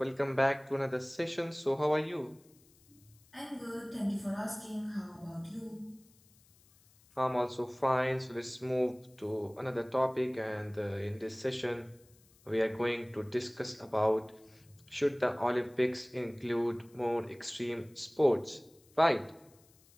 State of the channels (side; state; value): left; noise; hiss, 29 dB below the sound